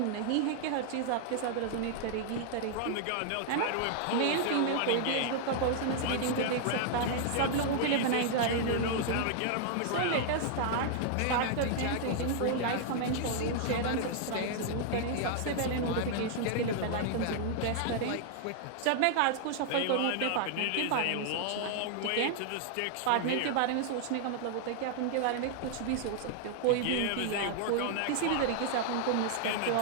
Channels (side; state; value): both; different; correlation 0.00